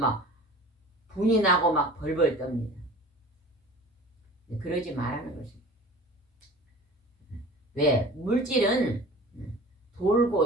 분이 나고 막 벌벌 떱니다. 그러지 말라는 것입니다. 왜? 물질은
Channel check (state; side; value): normal; both; correlation 0.41